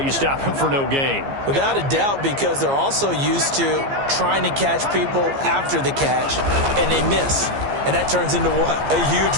you stop him for no gain. Without a doubt, because they're also used to trying to catch people after the catch, and they miss. And that turns into what? A huge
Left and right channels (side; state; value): left; late; 15 ms